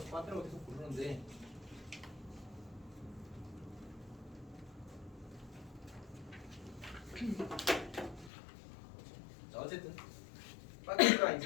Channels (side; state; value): right; drops out; at 8.3 s